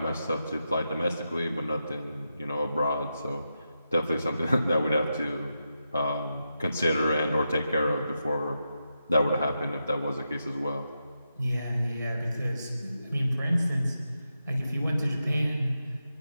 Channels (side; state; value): both; inverted; correlation -0.87